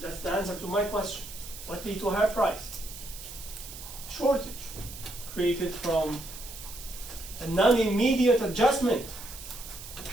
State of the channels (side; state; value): right; noise; hiss, 13 dB below the sound